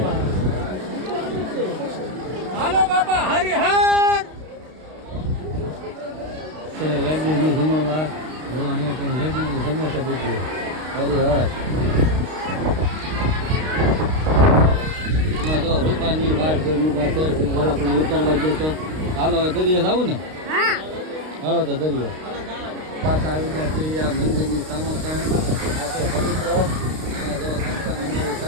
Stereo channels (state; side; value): late; left; 32 ms